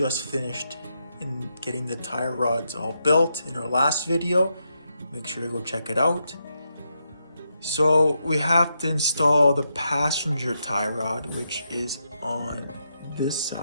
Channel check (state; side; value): inverted; both; correlation -0.83